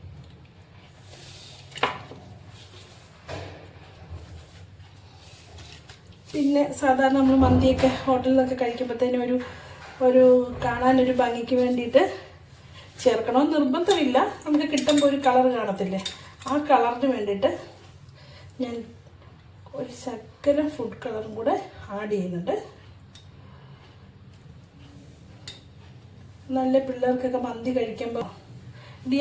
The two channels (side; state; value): both; identical; correlation 1.00